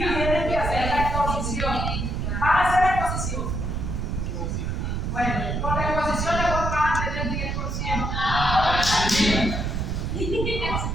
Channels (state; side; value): noise; right; rumble, 1 dB below the sound